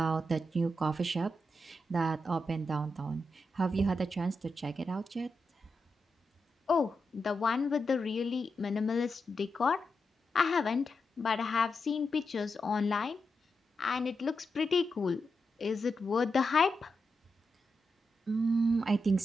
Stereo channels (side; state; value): both; normal; correlation 0.87